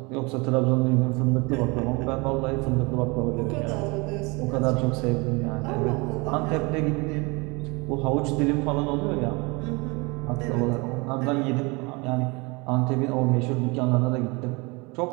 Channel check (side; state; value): left; quieter; 27.3 dB